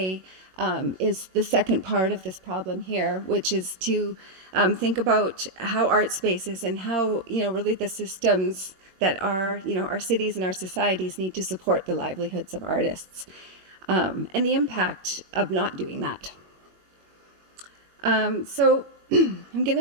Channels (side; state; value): left; late; 22 ms